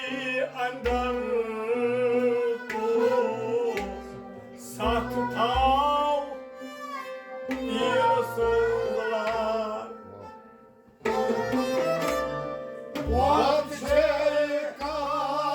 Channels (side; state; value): both; identical; correlation 1.00